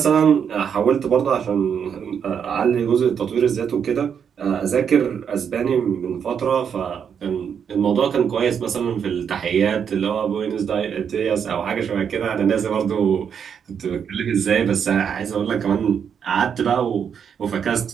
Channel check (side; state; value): left; quieter; 7.5 dB